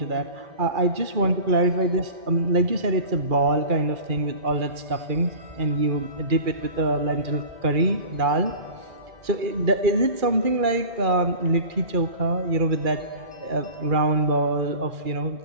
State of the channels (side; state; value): left; late; 2.4 ms